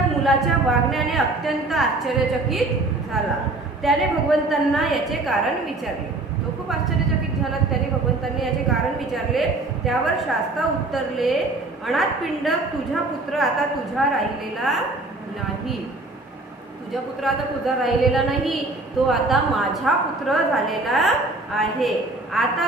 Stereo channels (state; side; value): quieter; left; 3.0 dB